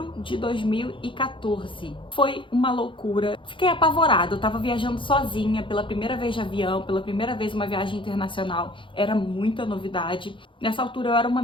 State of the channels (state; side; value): late; right; 0.25 ms